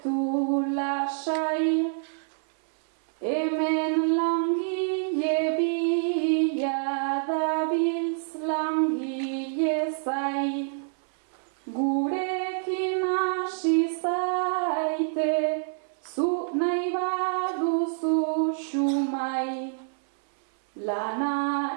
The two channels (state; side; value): silent; left; 60 dB below the other